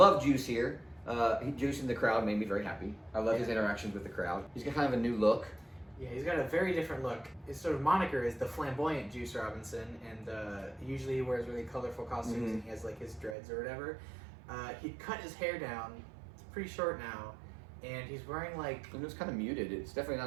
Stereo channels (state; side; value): drops out; left; at 13.4 s